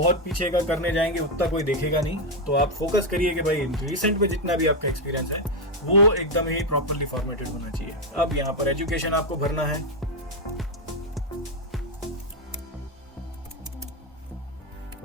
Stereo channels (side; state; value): both; normal; correlation 0.04